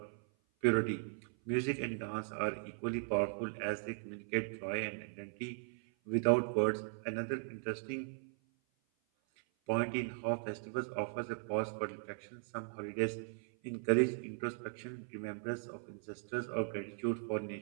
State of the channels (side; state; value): left; silent; 52 dB below the other